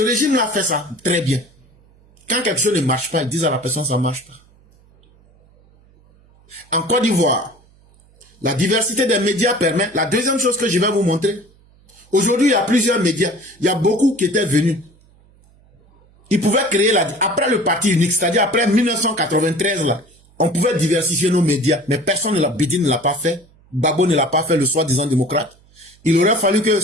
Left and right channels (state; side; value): noise; right; hum, 30 dB below the sound